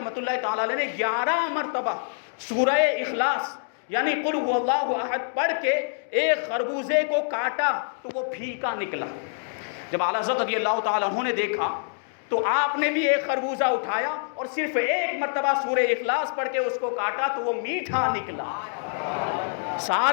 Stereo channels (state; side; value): silent; right; digital silence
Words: اللہ تعالیٰ علیہ نے 11 مرتبہ سورہ اخلاص یعنی قل هو اللہ احد پڑھ کے ایک خربوزے کو کاٹا تو وہ پھیکا نکلا۔ جب اعلیٰ حضرت رضی اللہ تعالیٰ عنہ نے دیکھا تو آپ نے بھی ایک خربوزہ اٹھایا اور صرف ایک مرتبہ سورہ اخلاص پڑھ کے اس کو کاٹا تو وہ میٹھا نکلا۔